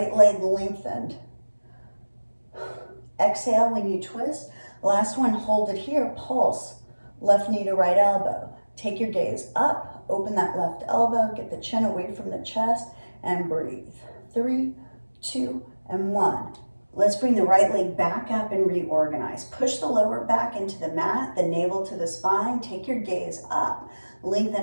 leg lengthened. Exhale when you twist. Last one, hold it here, pulse. Left knee to right elbow. Take your gaze up, open that left elbow, get the chin away from the chest, and breathe. 3, 2, and 1. Let's bring the right leg back up and reorganize. Push the lower back into the mat, the navel to the spine. Take your gaze up.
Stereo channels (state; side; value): inverted; both; correlation -1.00